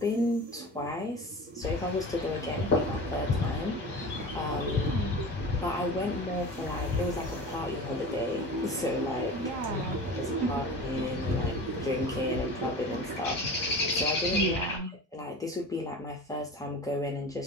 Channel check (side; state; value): both; normal; correlation 0.34